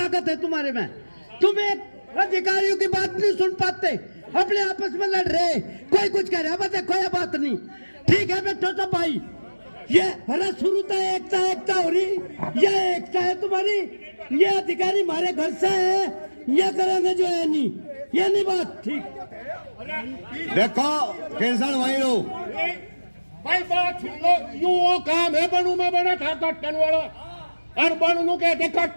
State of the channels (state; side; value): inverted; both; correlation -1.00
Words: है तुम्हारे में? तुम एक अधिकारियों की बात नहीं सुन पाते, अपने आपस में लड़ रहे, कोई कुछ कह रहा, बस कोई बात नहीं। ठीक है बैठो सब भाई, ये अरे शुरू तो एकता एकता हो रही, ये एकता है तुम्हारी, ये अधिकारी हमारे घर से है, ये करेंगे जो है नहीं, ये नहीं बात ठीक। देखो केसर भाई लोग, भाई बात सुन लो, यू वो काम है बनू में बना था कट्टन वाला, और बनू नु कहते